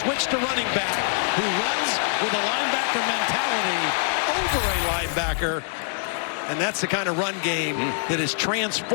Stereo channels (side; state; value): right; silent; digital silence